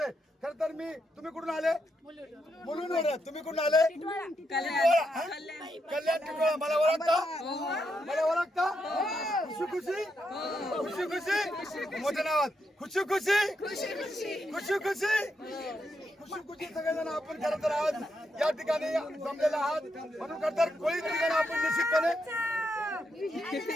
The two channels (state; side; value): normal; both; correlation 0.81